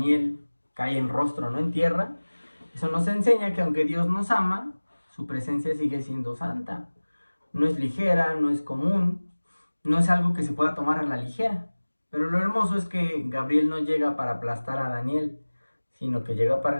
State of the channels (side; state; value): both; inverted; correlation -1.00